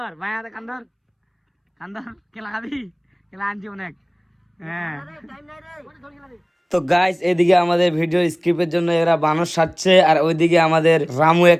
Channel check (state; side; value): identical; both; correlation 1.00